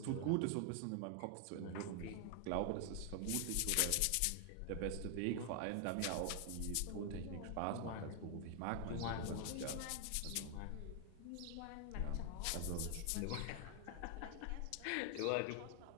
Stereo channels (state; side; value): different; both; correlation 0.00